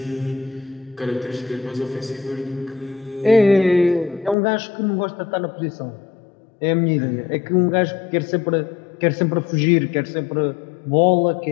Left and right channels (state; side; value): drops out; right; at 4.4 s